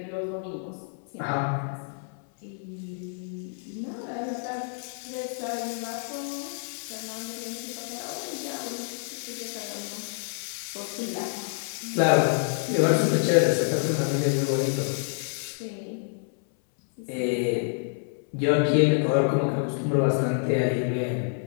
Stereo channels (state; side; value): silent; right; 60 dB below the other